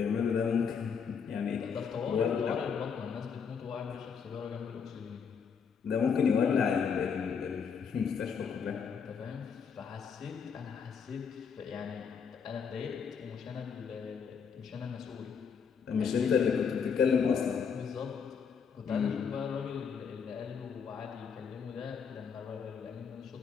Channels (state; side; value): quieter; right; 6.4 dB